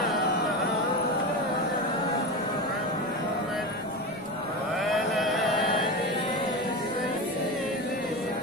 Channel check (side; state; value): both; normal; correlation 0.22